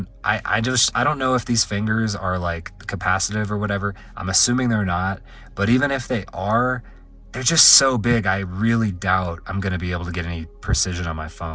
I don't know if these fingers are like capacitive or whatever. I'm assuming they're not, but even if they are, they're just so big, I really doubt I'm gonna be able to get any precision on my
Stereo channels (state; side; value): identical; both; correlation 1.00